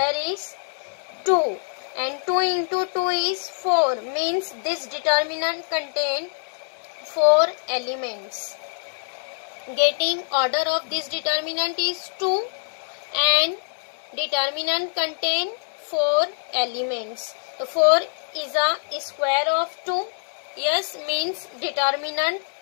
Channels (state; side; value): silent; right; 62 dB below the other